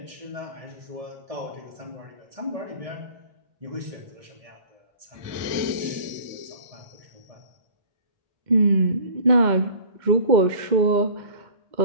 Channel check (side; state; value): left; late; 2.1 ms